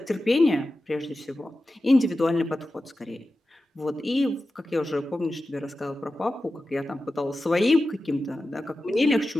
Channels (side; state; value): both; normal; correlation 0.93